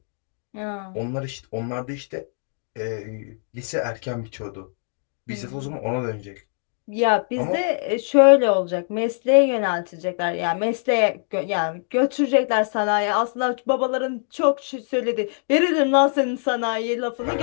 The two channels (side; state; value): right; silent; 63 dB below the other